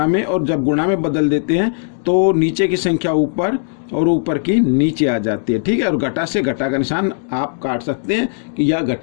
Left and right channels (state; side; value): silent; right; digital silence